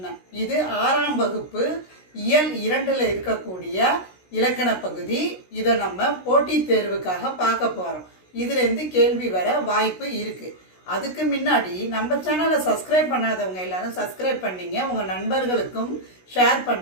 இது 6ஆம் வகுப்பு இயல் 2ல் இருக்கக்கூடிய இலக்கண பகுதி. இதை நம்ம போட்டித் தேர்வுக்காக பார்க்க போகிறோம். இதுலேருந்து கேள்வி வர வாய்ப்பு இருக்குது. அதுக்கு முன்னாடி நம்ம சேனலை சப்ஸ்கிரைப் பண்ணாதவங்க எல்லாரும் சப்ஸ்கிரைப் பண்ணிங்க, உங்கள் நண்பர்களுக்கும் ஷேர்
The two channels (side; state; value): right; late; 16 ms